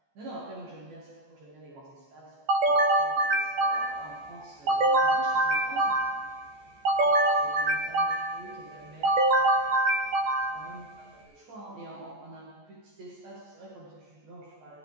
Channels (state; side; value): late; left; 14 ms